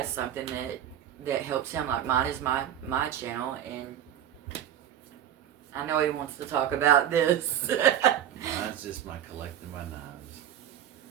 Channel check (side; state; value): left; quieter; 10.6 dB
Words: something that helps him. Like mine is my channel, and I know he wants to talk about this. Mine's just my collecting my knives.